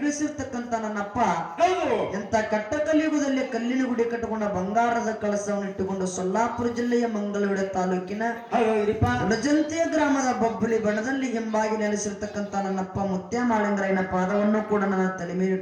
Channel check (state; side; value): identical; both; correlation 1.00